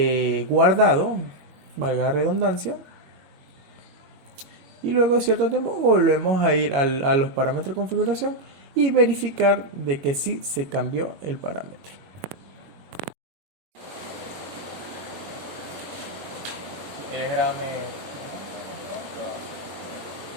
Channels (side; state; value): left; late; 21 ms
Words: guardado, valga la redundancia, y luego de cierto tiempo volvemos a ir a los parámetros de configuración y verificar de que sí se cambió el parámetro. Si quieres grame